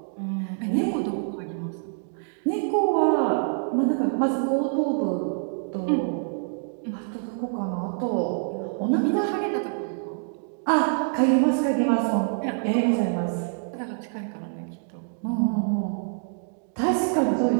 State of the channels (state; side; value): silent; left; 61 dB below the other